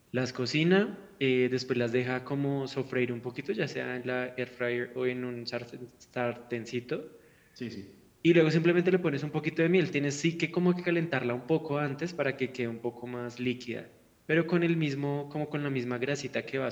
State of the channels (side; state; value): both; identical; correlation 1.00